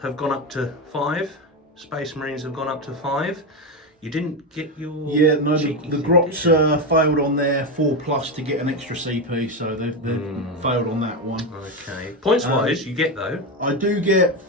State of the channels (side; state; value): both; normal; correlation 0.12